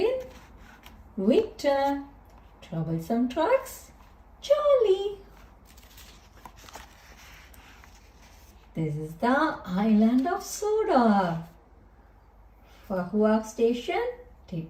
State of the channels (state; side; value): identical; both; correlation 1.00